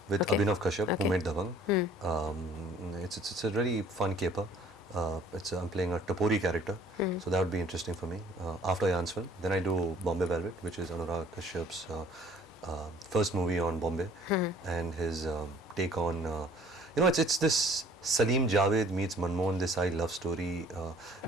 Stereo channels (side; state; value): both; normal; correlation 0.54